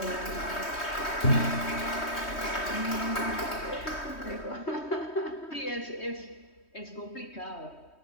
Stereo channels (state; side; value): late; right; 3.2 ms